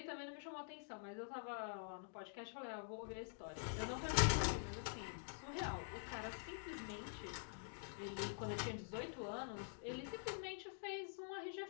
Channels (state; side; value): silent; right; digital silence